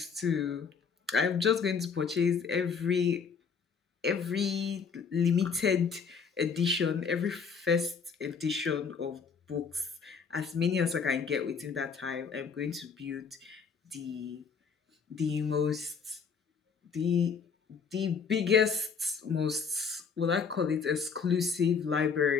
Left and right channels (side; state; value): right; quieter; 5.9 dB